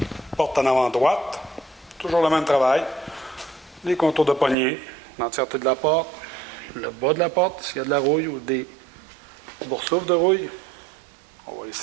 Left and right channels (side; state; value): left; drops out; at 4.5 s